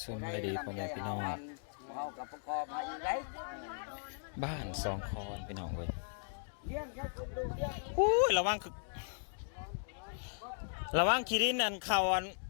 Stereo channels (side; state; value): right; silent; digital silence